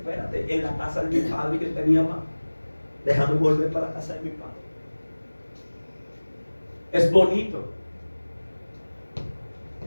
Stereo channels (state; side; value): inverted; both; correlation -1.00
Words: en la casa de mi padre que tenía más, déjame volver para la casa de mi padre. Es bonito,